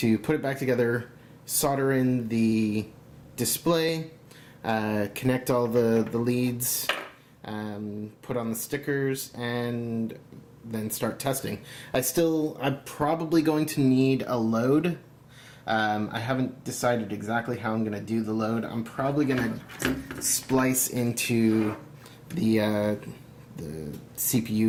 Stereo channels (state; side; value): identical; both; correlation 1.00